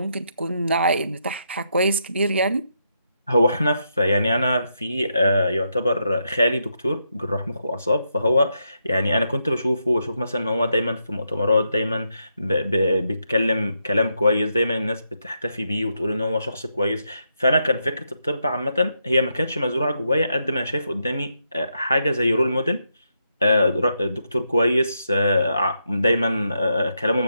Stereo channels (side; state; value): both; inverted; correlation -0.81